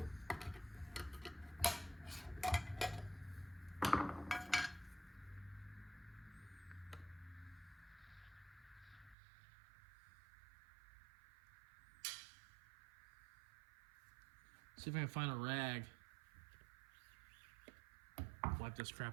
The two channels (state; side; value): drops out; left; at 9.2 s